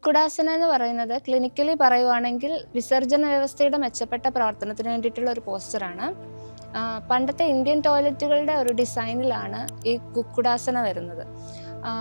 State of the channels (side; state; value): both; inverted; correlation -1.00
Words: എന്ന് പറയുന്നത് ക്ലിനിക്കലി പറയുവാണെങ്കിൽ വിസർജന വ്യവസ്ഥയുടെ മെച്ചപ്പെട്ട പ്രവർത്തനത്തിന് വേണ്ടിയിട്ടുള്ള ഒരു പോസ്റ്ററാണ്. പണ്ടത്തെ ഇന്ത്യൻ ടോയ്ലറ്റുകളുടെ ഒരു ഡിസൈനിലാണ് ഈ കുക്കുടാസന വരുന്നത്.